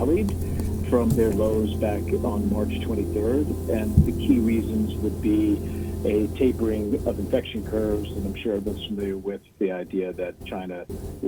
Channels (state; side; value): identical; both; correlation 1.00